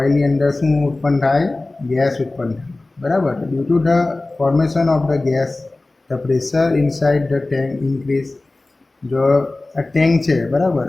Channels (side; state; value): right; quieter; 3.0 dB